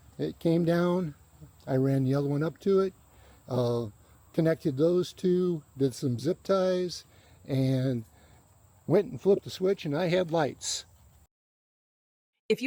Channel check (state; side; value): identical; both; correlation 1.00